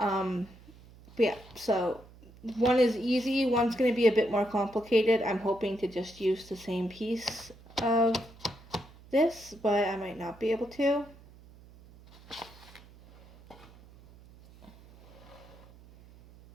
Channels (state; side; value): noise; right; hum, 22 dB below the sound